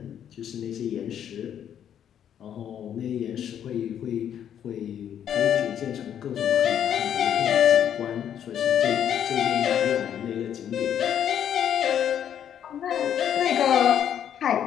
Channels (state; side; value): quieter; right; 9.5 dB